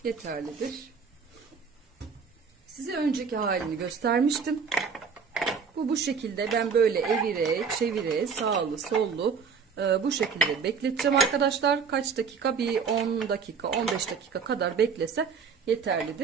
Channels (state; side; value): quieter; left; 5.9 dB